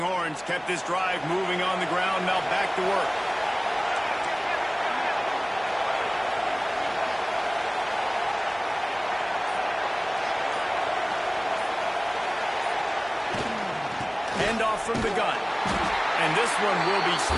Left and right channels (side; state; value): both; identical; correlation 1.00